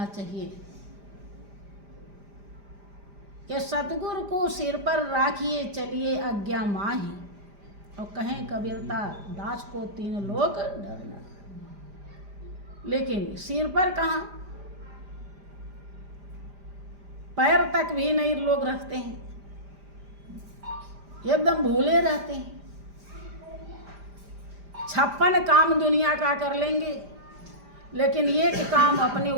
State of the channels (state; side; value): late; left; 5.0 ms